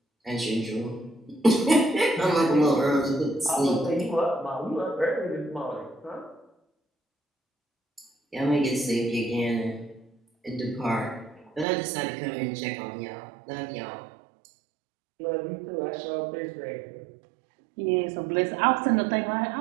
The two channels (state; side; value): drops out; left; at 11.7 s